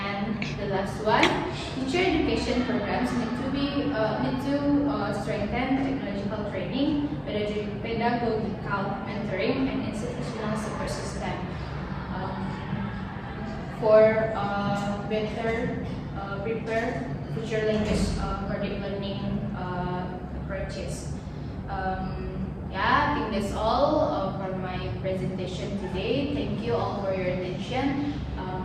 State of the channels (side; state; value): both; identical; correlation 1.00